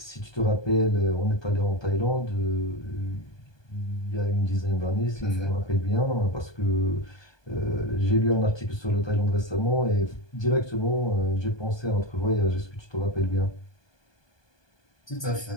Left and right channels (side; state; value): right; late; 1.2 ms